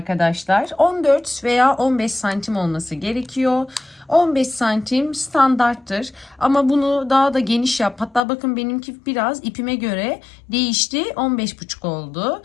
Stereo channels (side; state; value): right; drops out; at 8.2 s